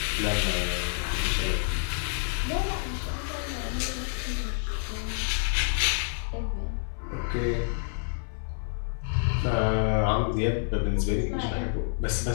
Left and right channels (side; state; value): right; silent; 58 dB below the other